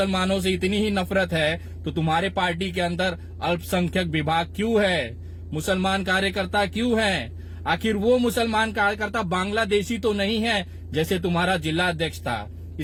से इतनी ही नफरत है तो तुम्हारे पार्टी के अंदर अल्पसंख्यक विभाग क्यों है, मुसलमान कार्यकर्ता क्यों हैं? आखिर वो मुसलमान कार्यकर्ता बांग्लादेशी तो नहीं है जैसे तुम्हारा जिला अध्यक्ष था।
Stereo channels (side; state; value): both; identical; correlation 1.00